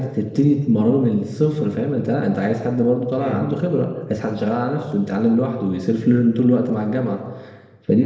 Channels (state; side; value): identical; both; correlation 1.00